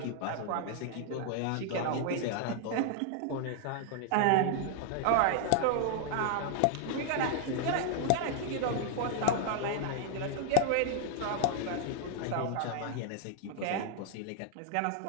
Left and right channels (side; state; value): both; different; correlation 0.00